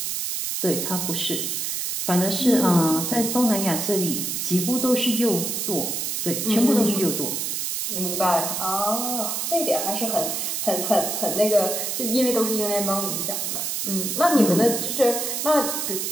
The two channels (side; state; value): right; noise; hiss, 2 dB below the sound